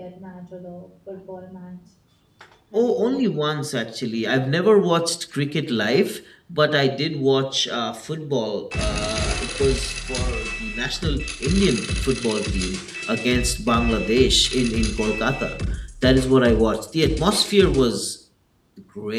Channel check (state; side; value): identical; both; correlation 1.00